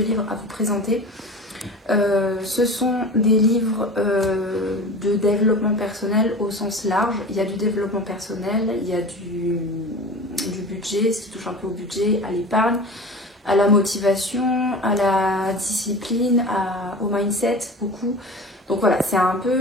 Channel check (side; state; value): both; normal; correlation 0.35